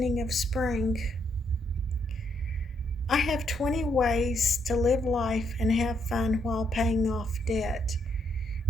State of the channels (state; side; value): normal; both; correlation 0.75